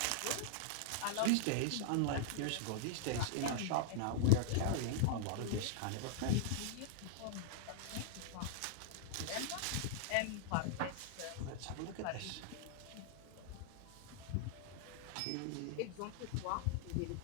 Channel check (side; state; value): both; different; correlation -0.01